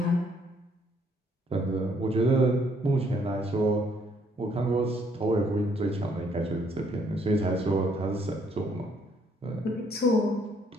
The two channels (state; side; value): normal; both; correlation 0.67